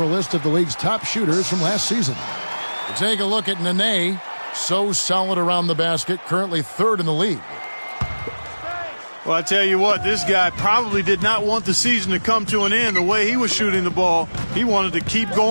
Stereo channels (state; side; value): inverted; both; correlation -1.00